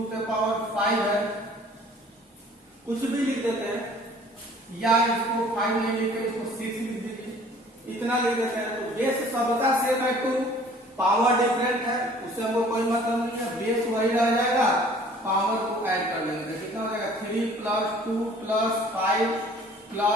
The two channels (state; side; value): normal; both; correlation 0.52